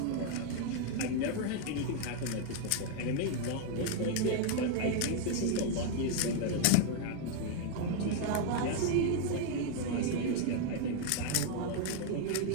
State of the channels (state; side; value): different; both; correlation 0.01